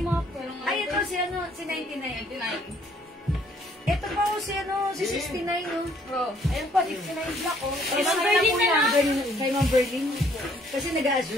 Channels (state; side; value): normal; both; correlation 0.63